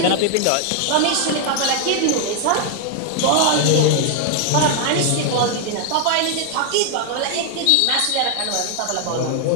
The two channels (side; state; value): both; different; correlation 0.00